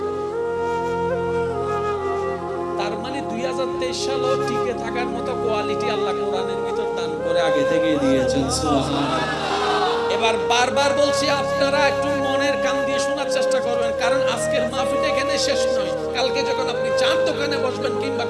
তার মানে 2023 সালও টিকে থাকার মতো কোয়ালিটি আল্লাহ কোরআনের ভিতর দান করে আগে থেকে দিয়েছেন। সুবহানাল্লাহ। এবার বারবার বলছি, আপনারা একটু মনের কান দিয়ে শোনার চেষ্টা করবেন, কারণ আজকের মাহফিল এখানে শেষ নয়। কালকে যখন আপনি চার দোকানে বসবেন কিংবা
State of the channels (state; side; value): identical; both; correlation 1.00